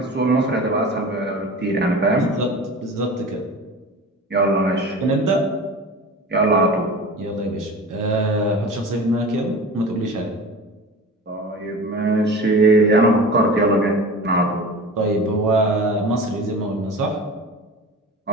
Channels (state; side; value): normal; both; correlation 0.35